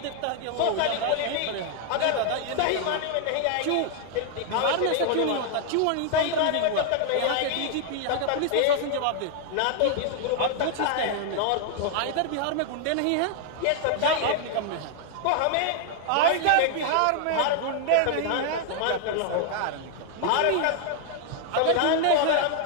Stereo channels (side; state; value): both; different; correlation 0.00